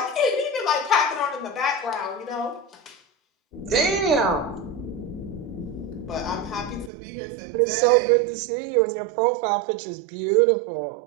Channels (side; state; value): left; drops out; at 6.9 s